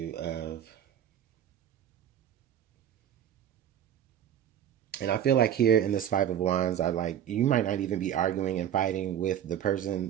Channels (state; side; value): quieter; left; 10.1 dB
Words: of, and I feel like here in this 5 of Wands, you might not even be arguing and fighting with the